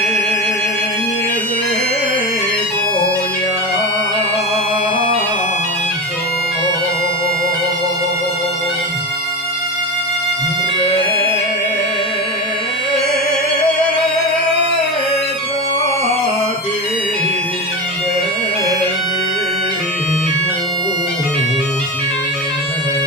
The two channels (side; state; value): both; normal; correlation 0.22